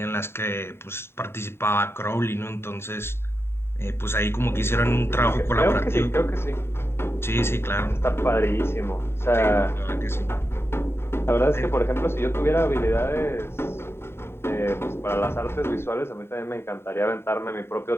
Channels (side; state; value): right; late; 0.12 ms